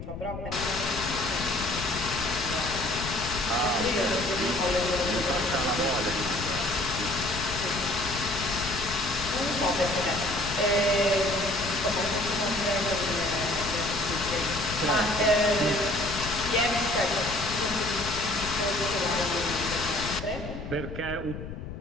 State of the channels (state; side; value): noise; left; rumble, 9 dB below the sound